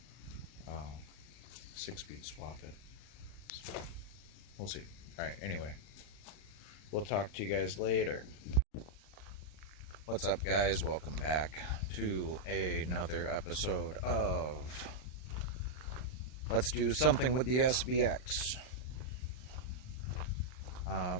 6-speed swap it. So we'll see. Alright, anyway, we'll talk to you guys later. What's up, guys? Welcome back to another episode of Let's Do Something with the SVX.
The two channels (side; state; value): right; late; 39 ms